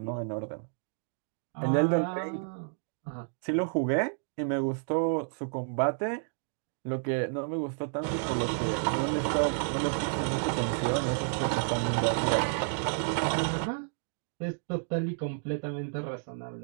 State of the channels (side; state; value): left; silent; digital silence